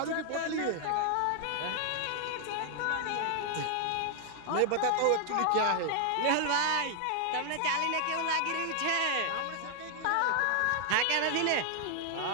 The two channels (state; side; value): different; both; correlation 0.00